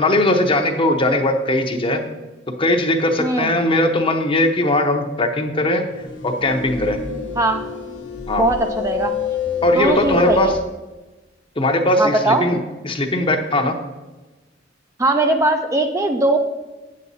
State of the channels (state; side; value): normal; both; correlation 0.32